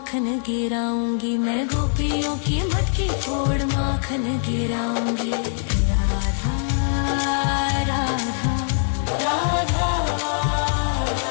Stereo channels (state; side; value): silent; right; digital silence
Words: गिराऊंगी। मैं गोपियों की मटकी फोड़ माखन गिराऊंगी। राधा राधा राधा